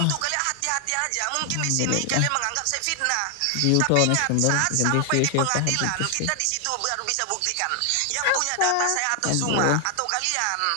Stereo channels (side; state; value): both; different; correlation 0.00